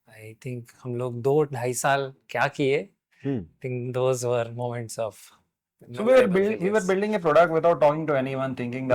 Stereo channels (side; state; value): both; identical; correlation 1.00